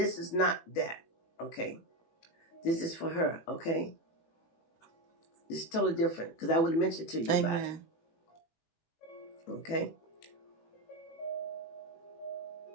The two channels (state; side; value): late; right; 18 ms